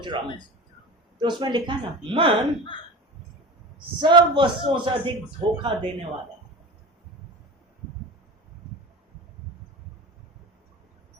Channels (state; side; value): normal; both; correlation 0.31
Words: रहा हूं. तो उसमें लिखा ना, मन सब वस्तुओं से अधिक धोखा देने वाला है.